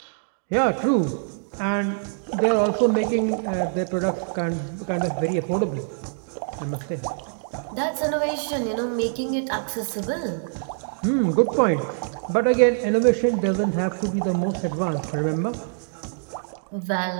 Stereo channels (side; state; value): left; silent; digital silence